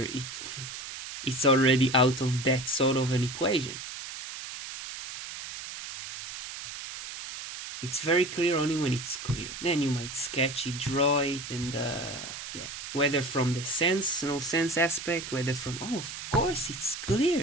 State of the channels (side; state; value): right; noise; hiss, 9 dB below the sound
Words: it's already out of that sort of an equation. It's very clear only when it's clear. Then you might sketch it, draw it, and whether from the sense, no sense aspect, whether from, of course it's